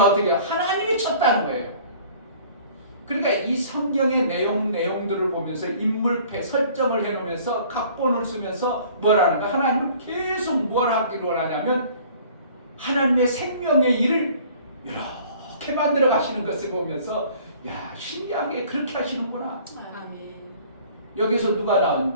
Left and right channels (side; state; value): both; inverted; correlation -0.51